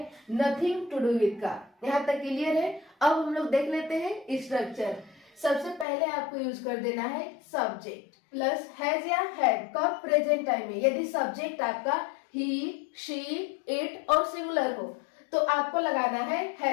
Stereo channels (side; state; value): right; drops out; at 5.9 s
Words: नथिंग टू डू विद का। यहाँ तक क्लियर है। अब हम लोग देख लेते हैं स्ट्रक्चर। सबसे पहले आपको यूज कर देना है सब्जेक्ट प्लस हैज या हैड का प्रेजेंट टाइम में। यदि सब्जेक्ट आपका ही, शी, इट और सिंगुलर हो तो आपको लगाना है